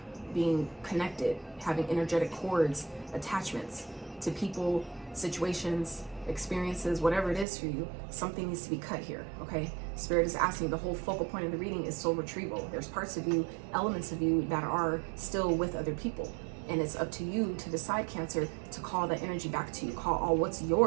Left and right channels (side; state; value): left; drops out; at 7.5 s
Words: being connected, having energetic cords, attachments to people, situations, experiences, whatever it is for you. Something needs to be cut here, okay? Spirit is asking, the whole focal point of the reading is soul retrieval. There's parts of you, elements of you that are still with other people. And it's up to you to decide, Cancer, to call that energy back to you. Call all what's